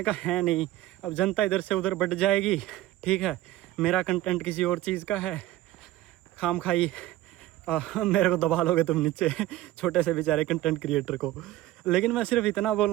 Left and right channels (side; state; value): left; quieter; 15.4 dB